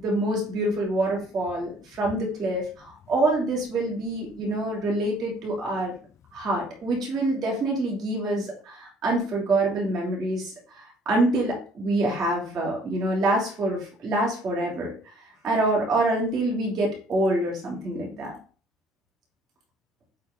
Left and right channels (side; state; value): both; normal; correlation 0.58